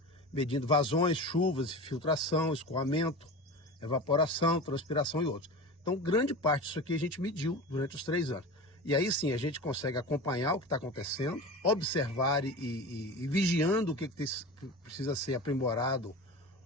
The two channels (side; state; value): both; normal; correlation 0.30